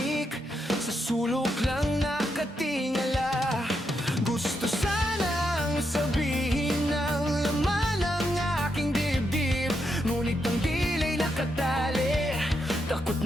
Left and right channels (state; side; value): normal; both; correlation 0.82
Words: sa sulok lang nakatingala. Gusto sanang sabihin ng laman ng aking dibdib, ngunit ang dilay nakatali, takot